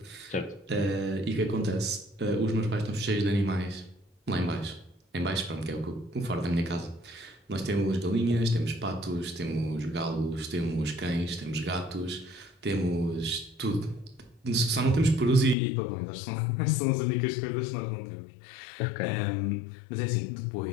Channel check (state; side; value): drops out; right; at 15.6 s